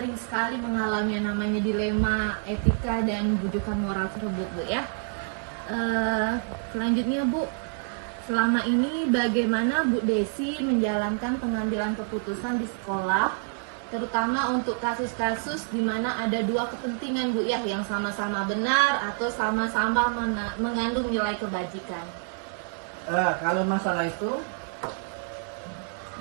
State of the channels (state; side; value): silent; left; 57 dB below the other